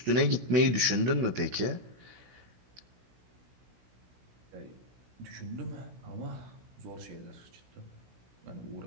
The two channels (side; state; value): left; late; 16 ms